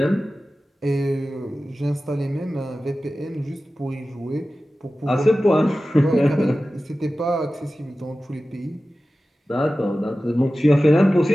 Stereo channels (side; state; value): both; normal; correlation 0.95